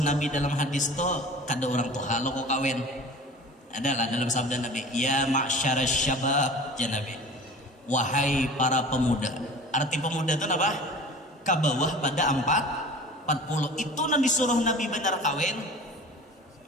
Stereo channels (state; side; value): normal; both; correlation 0.40